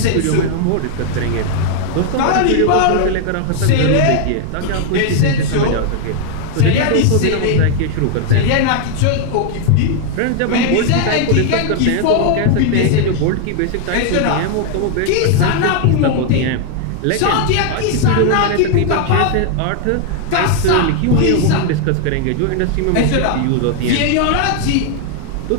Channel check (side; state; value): both; different; correlation 0.00